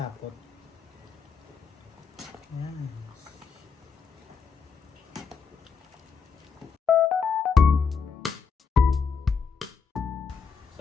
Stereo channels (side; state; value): right; quieter; 5.7 dB